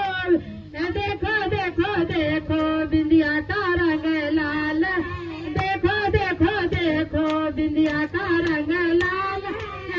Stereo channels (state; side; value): identical; both; correlation 1.00